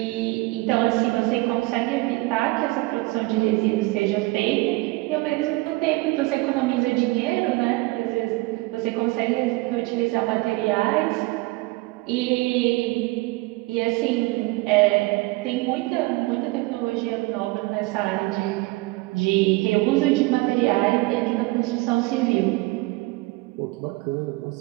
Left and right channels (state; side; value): quieter; left; 22.5 dB